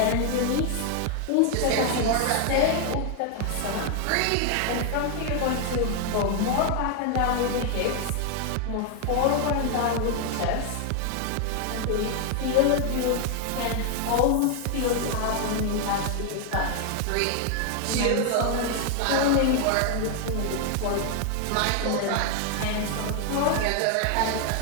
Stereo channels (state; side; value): different; both; correlation 0.00